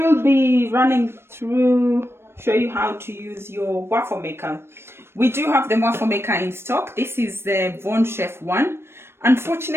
be running through, show you how to use your waffle maker. We do have the waffle maker in stock. This is the Von Chef one.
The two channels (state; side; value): late; left; 0.12 ms